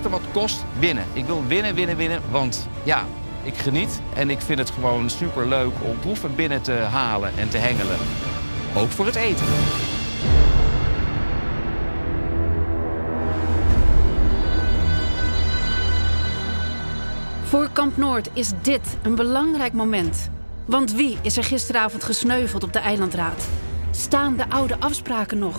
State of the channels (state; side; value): inverted; both; correlation -1.00